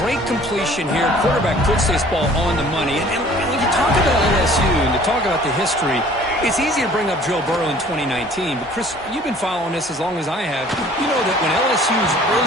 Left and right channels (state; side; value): normal; both; correlation 0.52